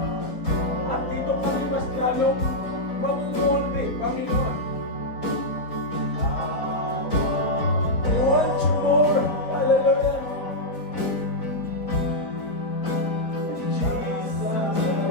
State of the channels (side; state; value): right; late; 4.0 ms